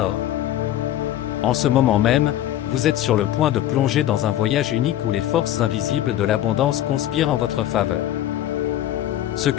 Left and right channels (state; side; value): quieter; right; 12.7 dB